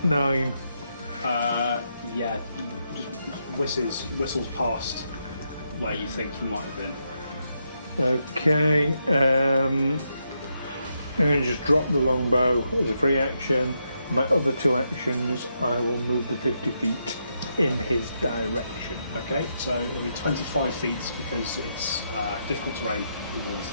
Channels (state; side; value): inverted; both; correlation -0.81